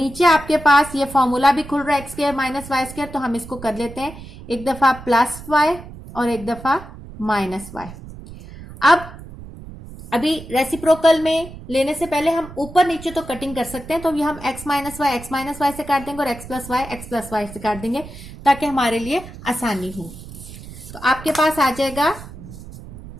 आपके पास ये फॉर्मूला भी खुल रहा है x square minus y square, तो हम इसको कर लेते हैं एक दफा प्लस वाई और एक दफा माइनस वाई। अब अभी रेसिप्रोकल में लेने से पहले हम ऊपर नीचे तो कटिंग कर सकते हैं, तो ये हम x माइनस वाई से काट देंगे और x प्लस वाई से काट देंगे ताकि हमारे लिए आसानी हो। तो आपके पास आ जाएगा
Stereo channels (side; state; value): right; noise; rumble, 15 dB below the sound